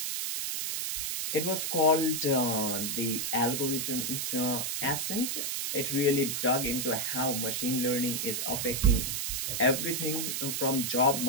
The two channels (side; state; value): right; noise; hiss, 1 dB below the sound